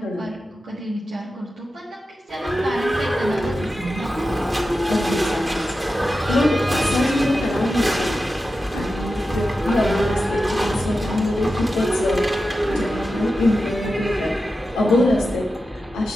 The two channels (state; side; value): normal; both; correlation 0.92